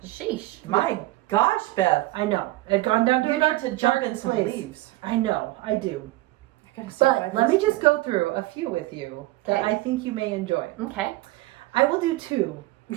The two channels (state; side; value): quieter; left; 18.8 dB